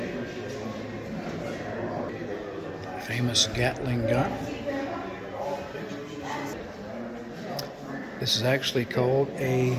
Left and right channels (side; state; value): both; identical; correlation 1.00